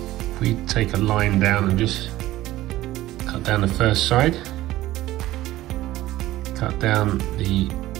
we take a line down and just cut down the first side, cut down the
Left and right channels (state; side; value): quieter; left; 15.9 dB